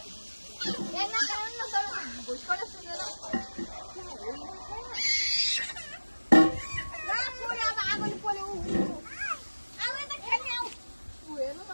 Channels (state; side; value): inverted; both; correlation -1.00